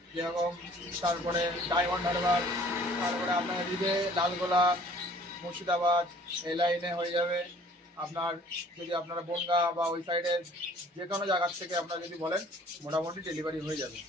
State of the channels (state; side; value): normal; both; correlation 0.54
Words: যেরকম, তারপরে ডায়মন্ড হারবার, তারপরে আপনার এদিকে লালগোলা, মুর্শিদাবাদ, এই লাইনে হয়ে যাবে আপনার। যদি আপনারা বনগা বা ওই সাইডে যে কোনো জায়গার থেকে আপনারা যদি বলেন মোটামুটি ডেলিভারি হয়ে যাবে।